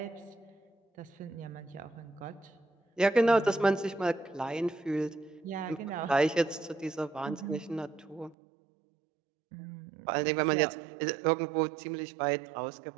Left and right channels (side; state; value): left; drops out; at 8.3 s